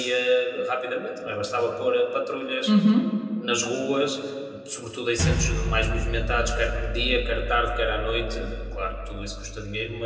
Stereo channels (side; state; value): both; identical; correlation 1.00